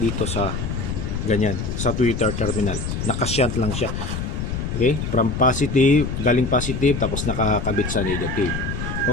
sa ganyan, sa tweeter terminal. Nakashut lang siya. Okay? From positive, galing positive tapos nakakabit sa negative.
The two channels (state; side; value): noise; left; rumble, 3 dB below the sound